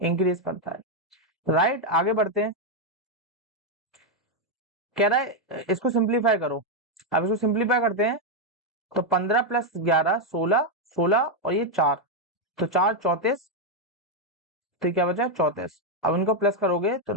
इंक्रीज करता है। राइट, आगे बढ़ते हैं। कह रहा है इसको सिंप्लीफाई करो। अब इसको सिंप्लीफाई करते हैं तो 15 + 11 16, 16 और ये 4, तो 4 34, तो क्या बचा 34। अब इनको प्लस करोगे तो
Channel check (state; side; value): normal; both; correlation 0.02